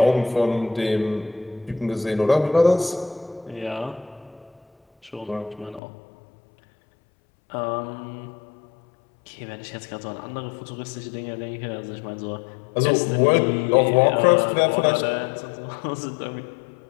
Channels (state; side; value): drops out; right; at 5.8 s